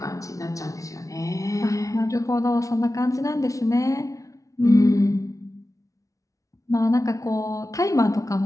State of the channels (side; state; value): right; late; 0.16 ms